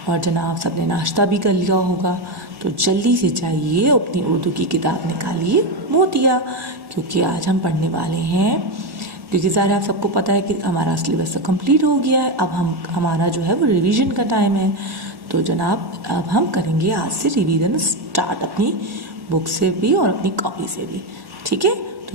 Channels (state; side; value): late; left; 1.6 ms